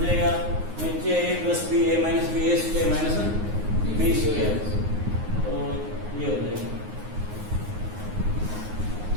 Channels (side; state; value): left; late; 9.6 ms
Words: जाएगा। नीचे ए प्लस बी ए माइनस बी ए स्क्वायर माइनस बी स्क्वायर, तो ये हो जाएगा।